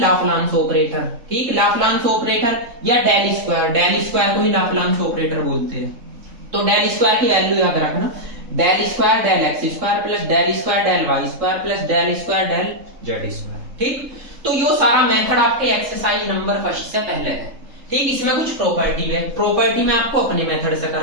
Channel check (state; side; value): late; left; 3.7 ms